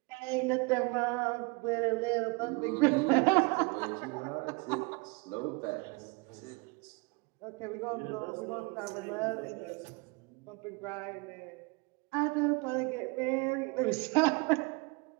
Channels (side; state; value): left; quieter; 28.9 dB